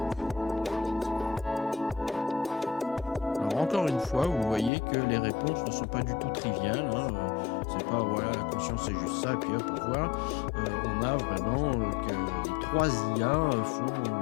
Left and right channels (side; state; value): right; drops out; at 4.7 s